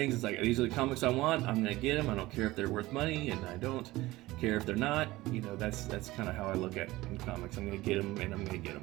It's like, these are the comics I want. I'm gonna get them. I don't care if they're worth money, and I don't care if they're not. You know, that's kind of how I look at in comics. I'm gonna get them, and I'm gonna get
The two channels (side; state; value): left; quieter; 18.5 dB